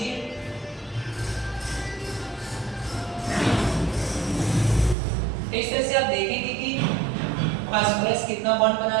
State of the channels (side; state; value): left; drops out; at 5.0 s